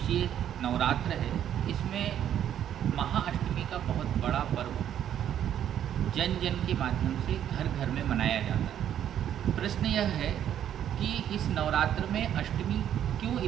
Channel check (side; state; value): left; quieter; 10.2 dB